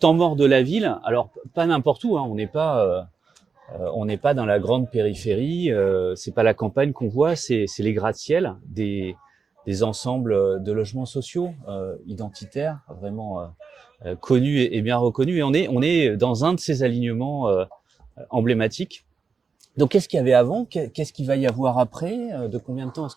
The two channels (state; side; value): quieter; left; 5.3 dB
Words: mort de la ville, alors pas n'importe où, hein, on n'est pas dans la grande périphérie, c'est pas la campagne qu'on voit, c'est les gratte-ciel, des ensembles de logements sociaux identitaires, vraiment connus et bien reconnus. Et on est dans un de ces alignements emblématiques. Donc, qu'est-ce qu'il y avait avant? Qu'est-ce qu'il va y avoir après? De combien de temps est-ce